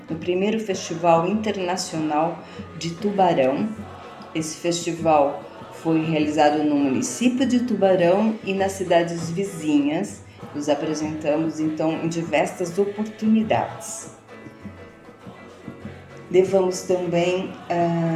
no 1º Festival Internacional de Tubarão. Esse festival foi realizado no município de Tubarão e nas cidades vizinhas. Nos apresentamos, então, em diversas oportunidades. Levamos também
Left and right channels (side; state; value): both; identical; correlation 1.00